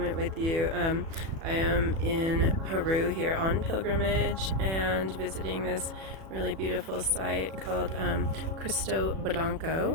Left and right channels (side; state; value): left; late; 37 ms